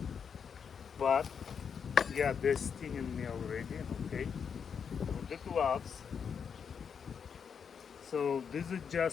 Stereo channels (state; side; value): quieter; right; 6.8 dB